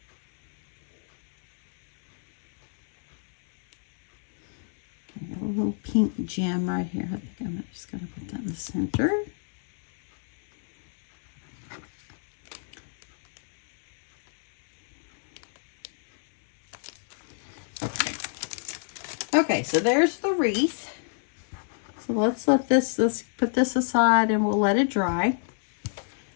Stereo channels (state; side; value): silent; right; digital silence